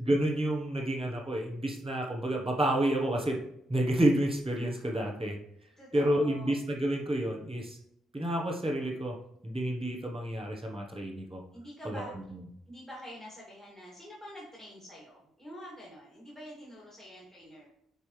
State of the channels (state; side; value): normal; both; correlation 0.84